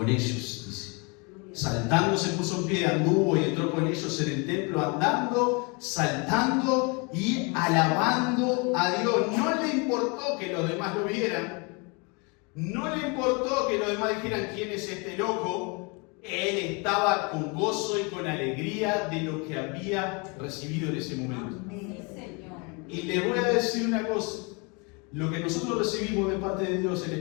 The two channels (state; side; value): quieter; right; 31.1 dB